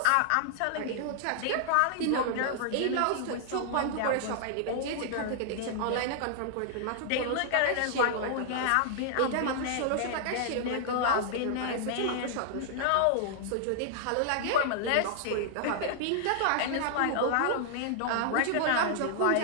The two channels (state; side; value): different; both; correlation -0.01